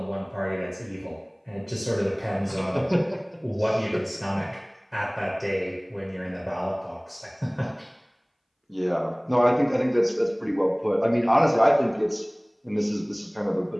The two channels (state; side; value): identical; both; correlation 1.00